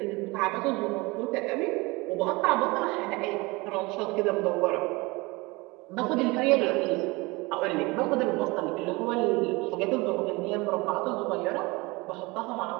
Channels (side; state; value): left; quieter; 24.1 dB